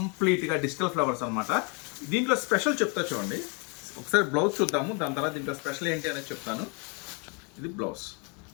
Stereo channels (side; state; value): right; quieter; 34.7 dB